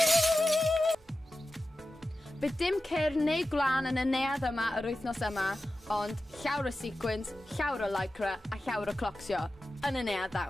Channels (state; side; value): normal; both; correlation 0.94